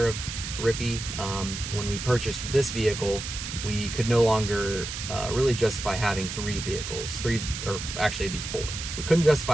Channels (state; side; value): noise; right; hiss, 7 dB below the sound